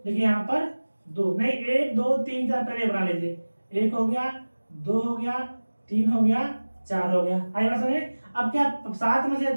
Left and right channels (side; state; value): both; inverted; correlation -1.00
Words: देखिए यहाँ पर 2 नहीं 1 2 3 4 पहले बना लीजिए, 1 हो गया 2 हो गया 3 हो गया 4 हो गया। आई बात समझे। अब क्या 7 में से